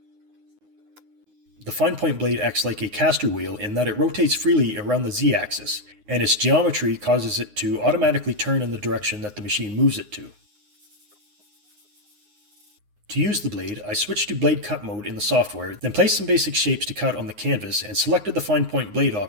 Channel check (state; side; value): late; left; 9.6 ms